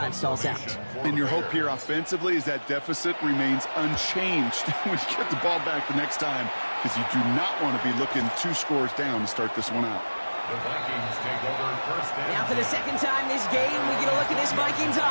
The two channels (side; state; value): both; inverted; correlation -1.00